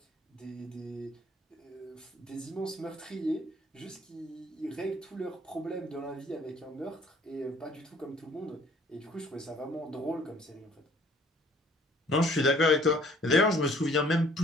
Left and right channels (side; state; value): both; normal; correlation 0.57